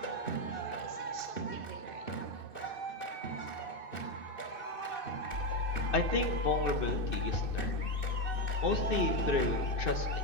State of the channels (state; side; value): late; left; 2.6 ms